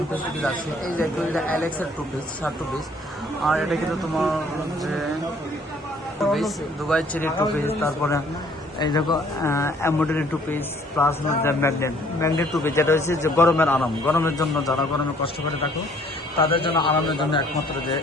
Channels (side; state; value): both; normal; correlation 0.59